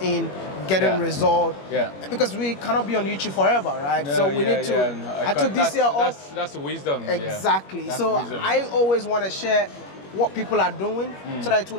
in, getting results. Because we cannot be on YouTube forever, right? So we need to. I took this year off. That's wisdom. Exactly. So wisdom. I always want to share what people are doing so that it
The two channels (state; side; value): late; right; 21 ms